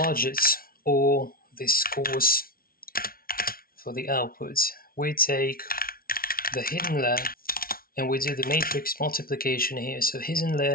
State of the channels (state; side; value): late; right; 0.43 ms